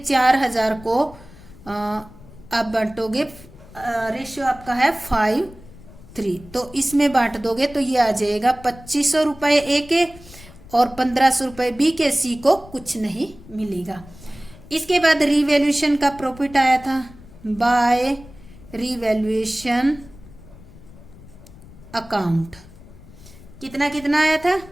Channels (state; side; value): noise; left; rumble, 20 dB below the sound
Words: को आप बांटोगे, रेशियो आपका है 5:3, तो इसमें बांट दोगे तो ये आ जाएगा 2500 रुपये ए के और 1500 रुपये बी के। सी को कुछ नहीं मिलेगा। इसके बाद रीवैल्यूएशन का प्रॉफिट आया था बाय रीवैल्यूएशन अकाउंट। कितना कितना आया था?